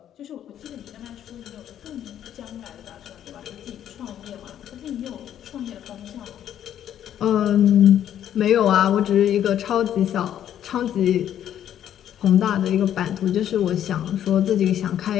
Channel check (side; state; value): right; quieter; 10.5 dB